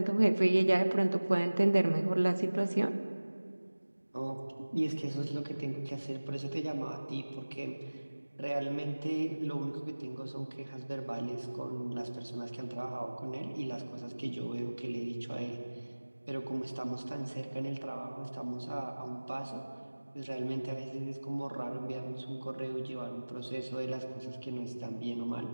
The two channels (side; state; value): both; inverted; correlation -1.00